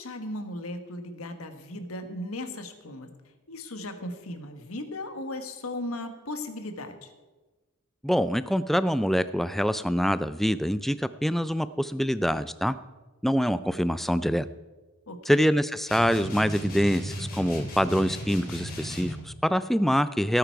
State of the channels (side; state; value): both; normal; correlation 0.93